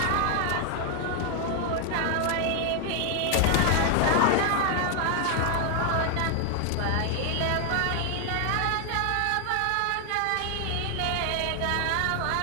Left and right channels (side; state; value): both; different; correlation 0.00